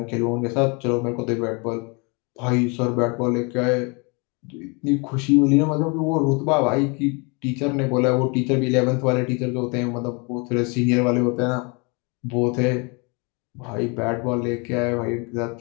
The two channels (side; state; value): right; quieter; 31.5 dB